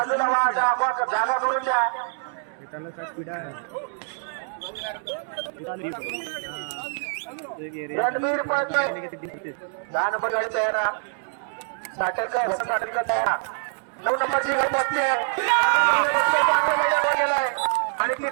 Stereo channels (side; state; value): left; silent; digital silence